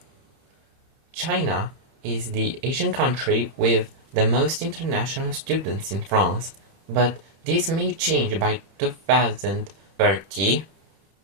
China is the Asian country with the most international students in France, but this may change by 2030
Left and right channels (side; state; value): left; late; 31 ms